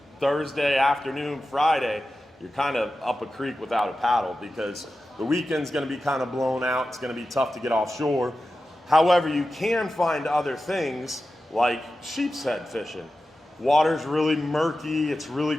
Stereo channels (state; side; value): normal; both; correlation 0.93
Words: Thursday afternoon, Friday, you're kind of up a creek without a paddle because the weekend's going to be kind of blown out. It's going to be tough to get offshore. However, you can find other things like sheep's head fishing. Water's really murky, it's